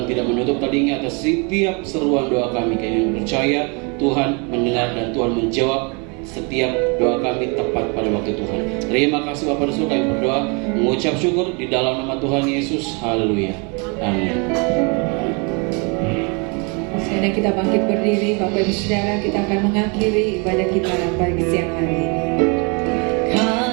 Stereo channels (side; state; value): left; quieter; 32.9 dB